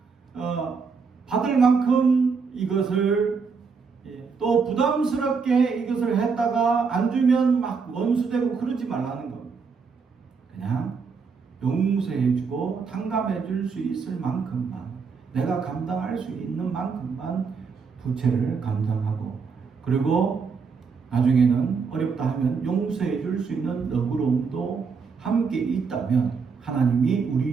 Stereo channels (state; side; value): quieter; left; 5.3 dB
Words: 받을 만큼 이것을 또 부담스럽게 이것을 했다가 안 주면 막 원수되고 그러지 말라는 겁니다. 그냥 용서해주고 탕감해줄 수 있을 만큼만, 내가 감당할 수 있는 만큼만 부채를 감당하고, 그리고 나중에는 어렵다 하면 용서해줄 수 있는 너그러움도 함께 있다면 하나님이